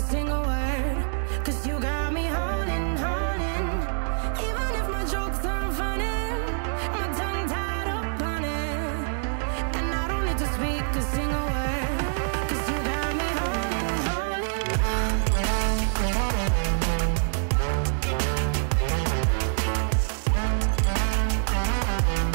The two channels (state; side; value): silent; left; digital silence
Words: word, 'cause you got me holding, holding. Even if my jokes aren't funny, my tongue tied up on it. And I don't need to speak a single word, 'cause you got me holding, holding.